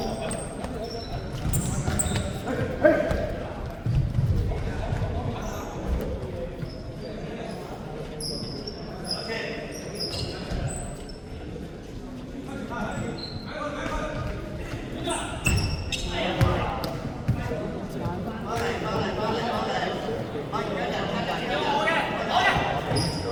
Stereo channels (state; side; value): identical; both; correlation 1.00